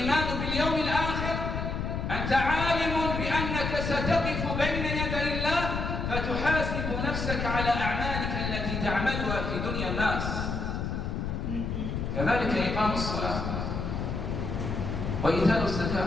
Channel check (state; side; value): noise; left; rumble, 2 dB below the sound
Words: باليوم الآخر أنت عالم بأنك ستقف بين يدي الله فتحاسب نفسك على أعمالك التي تعملها في دنيا الناس. كذلك إقام الصلاة وإيتاء